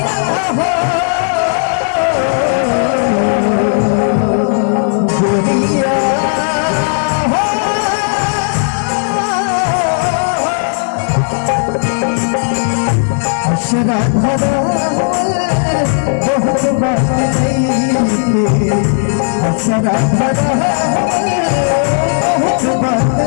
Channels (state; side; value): silent; right; digital silence